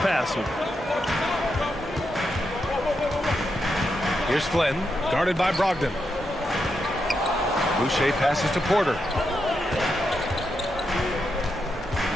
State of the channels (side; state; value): both; normal; correlation 0.84